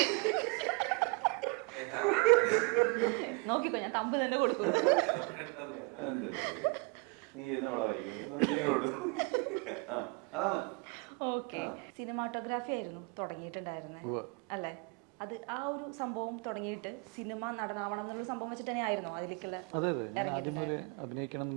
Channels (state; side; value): quieter; left; 32.2 dB